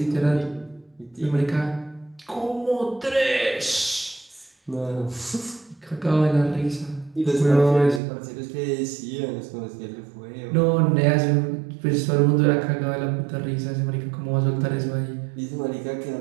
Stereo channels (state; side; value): drops out; left; at 8.0 s